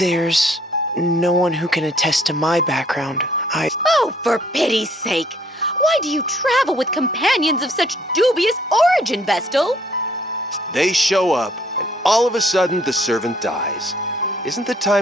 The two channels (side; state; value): both; normal; correlation 0.62